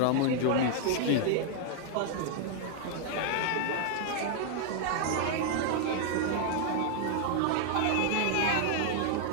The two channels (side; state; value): both; different; correlation 0.00